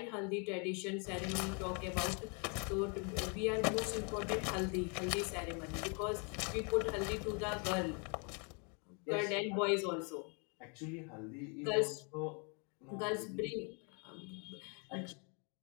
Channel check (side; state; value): right; quieter; 36.4 dB